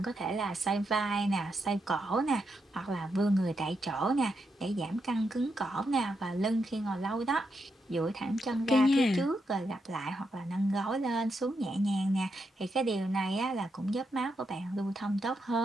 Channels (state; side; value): normal; both; correlation 0.83